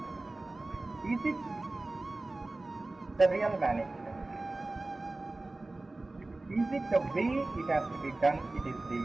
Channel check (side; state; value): left; quieter; 3.0 dB